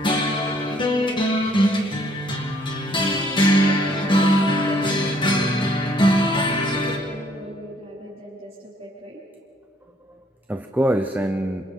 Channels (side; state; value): both; normal; correlation 0.65